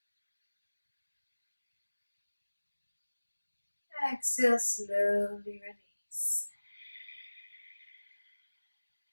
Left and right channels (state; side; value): inverted; both; correlation -1.00